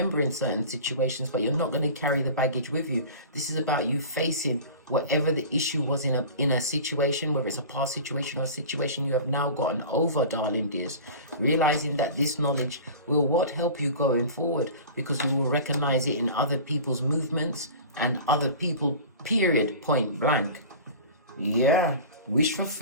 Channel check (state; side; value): inverted; both; correlation -0.38